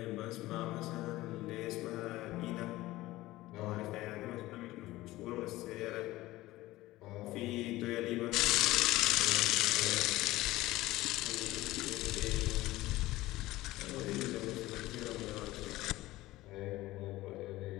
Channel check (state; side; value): quieter; right; 17.6 dB